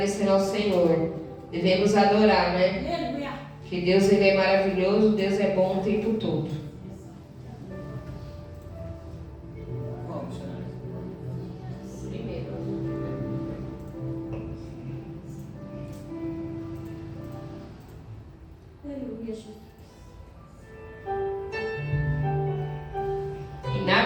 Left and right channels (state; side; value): identical; both; correlation 1.00